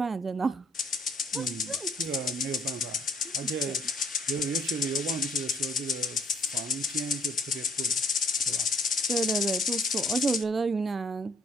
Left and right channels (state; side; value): normal; both; correlation 0.64